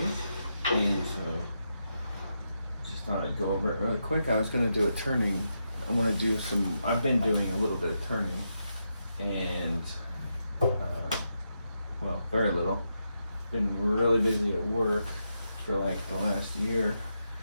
and so just thought I'd go over it really quick. I was going to do a turning. I want to do some, I've been doing a little bit of turning, and well, very little. Been really busy at work for like the last year.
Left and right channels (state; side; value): inverted; both; correlation -0.84